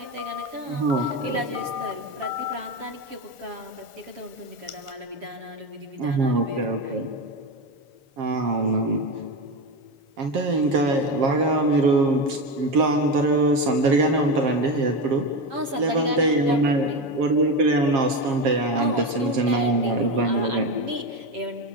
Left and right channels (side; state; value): left; late; 7.4 ms